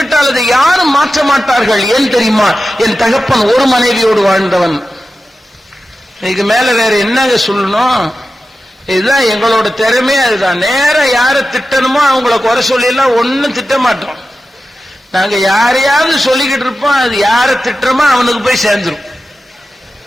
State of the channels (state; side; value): normal; both; correlation 0.93